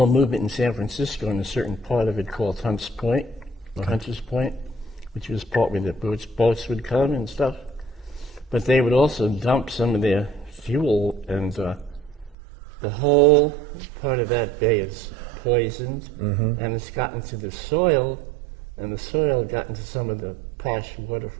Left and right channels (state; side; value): drops out; left; at 12.4 s